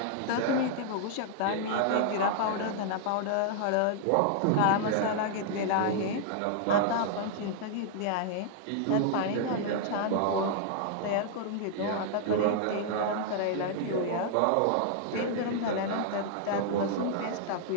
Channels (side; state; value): both; different; correlation -0.01